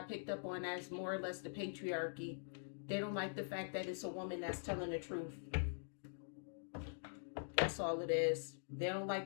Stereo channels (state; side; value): silent; right; digital silence